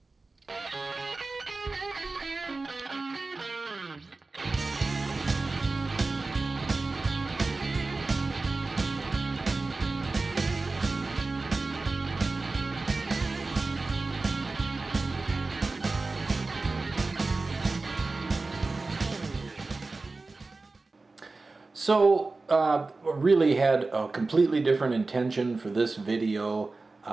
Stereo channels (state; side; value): quieter; left; 3.6 dB